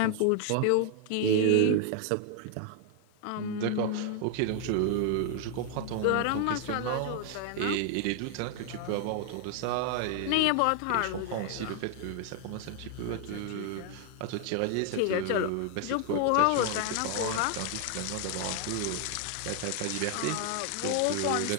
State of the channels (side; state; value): both; different; correlation 0.00